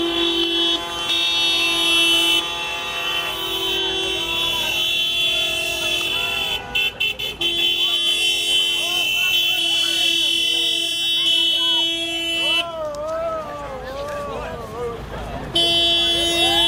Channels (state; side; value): identical; both; correlation 1.00